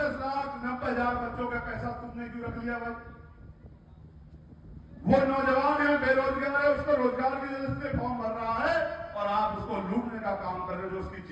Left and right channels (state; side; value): identical; both; correlation 1.00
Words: बच्चों का पैसा तुमने क्यों रख लिया भाई? वो नौजवान है, बेरोजगार है, उसको रोजगार की वजह से फॉर्म भर रहा है और आप उसको लूटने का काम कर रहे हो, जो उसकी